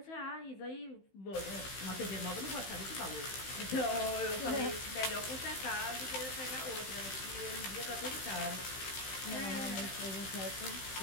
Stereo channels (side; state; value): right; late; 15 ms